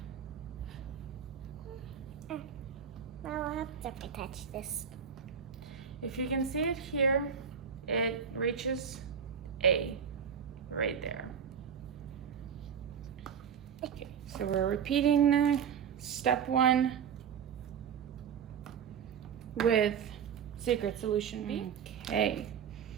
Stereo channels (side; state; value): left; quieter; 7.4 dB